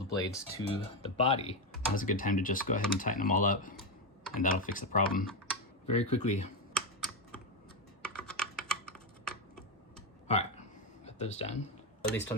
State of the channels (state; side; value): normal; both; correlation 0.09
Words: blades to the body. Now's a good time to just go ahead and tighten them all up, and that'll fix the problem very quickly. All right, got those done. At least